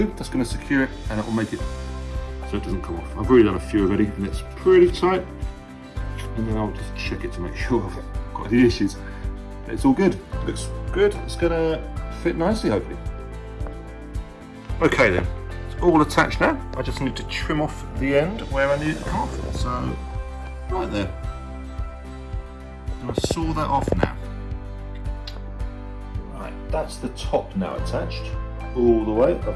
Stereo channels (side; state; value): both; identical; correlation 1.00